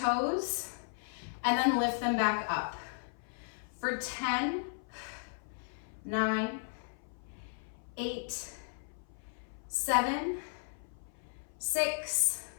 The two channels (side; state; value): right; silent; 54 dB below the other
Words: and then lift them back up. For 10, 9, 8, 7, 6,